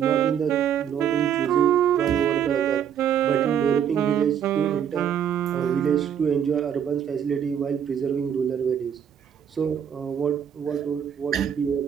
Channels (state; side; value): quieter; left; 8.7 dB